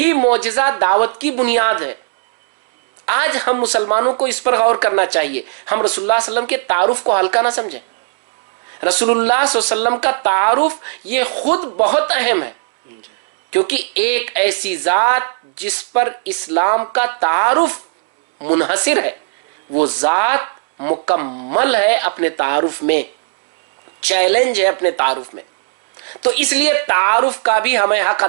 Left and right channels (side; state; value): left; silent; 64 dB below the other